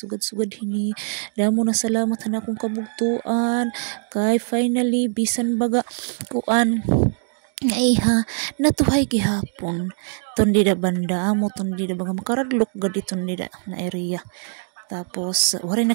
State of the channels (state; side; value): silent; left; 64 dB below the other